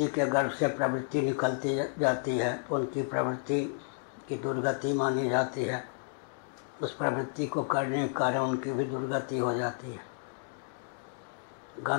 के गर्भ से प्रवृत्ति निकलती जाती है, तो उनकी प्रवृत्ति की दुर्गति मानी जाती है। उस प्रवृत्ति को करने के कारण उनकी भी दुर्गति हो जाती है।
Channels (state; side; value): silent; right; digital silence